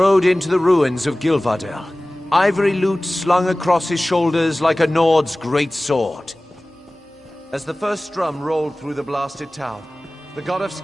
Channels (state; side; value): normal; both; correlation 0.98